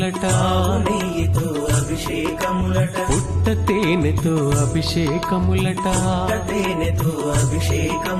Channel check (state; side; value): identical; both; correlation 1.00